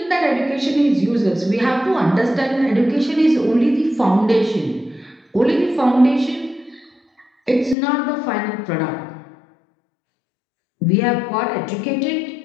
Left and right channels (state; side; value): drops out; right; at 7.8 s